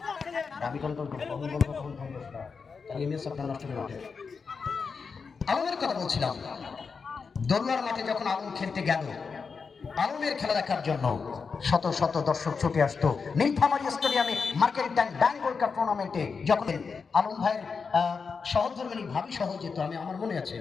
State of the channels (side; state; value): right; quieter; 5.3 dB